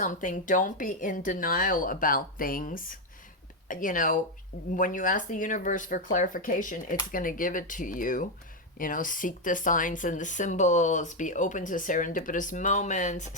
don't be in denial about things. You know, when you ask the universe for clarification, it's going to give it to you. You know, seek the signs and the symbols. Be open to serendipitous moments.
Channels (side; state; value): both; normal; correlation 0.05